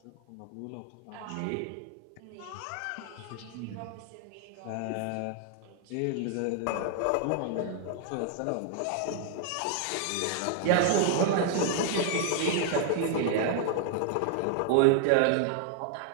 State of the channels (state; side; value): different; both; correlation 0.00